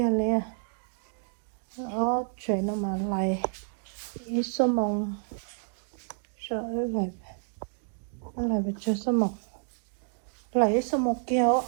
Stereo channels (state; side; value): silent; left; 58 dB below the other